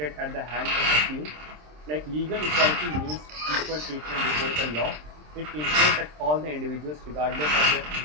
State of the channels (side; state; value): left; late; 26 ms